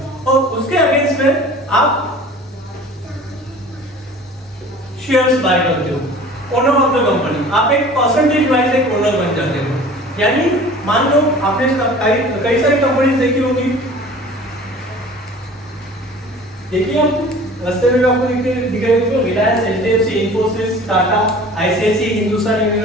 और उसके अगेंस्ट में आप शेयर्स बाय करते हो, ओनर ऑफ द कंपनी। आप एक परसेंटेज वाइज एक ओनर बन जाते हो। यानी मान लो आपने कई सारी कंपनीज देखी होगी, देखिए आप रास्ते में आपको दिख रहे होंगे, Reliance, HDFC, Infosys, Tata, ICICI, Hindustan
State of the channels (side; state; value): both; normal; correlation 0.44